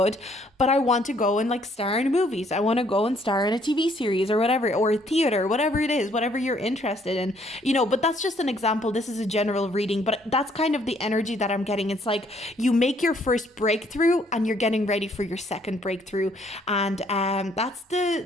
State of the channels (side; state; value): both; normal; correlation 0.65